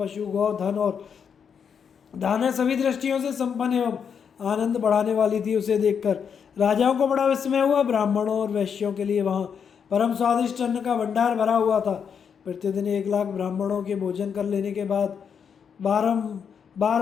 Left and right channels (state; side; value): quieter; right; 7.1 dB